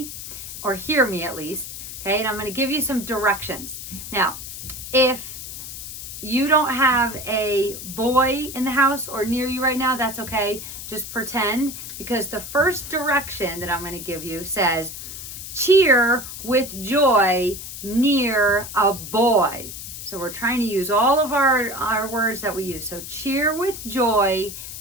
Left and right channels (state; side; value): noise; left; hiss, 10 dB below the sound